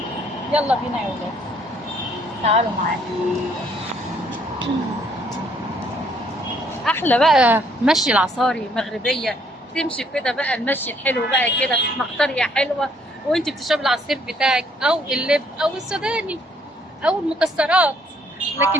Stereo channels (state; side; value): normal; both; correlation 0.66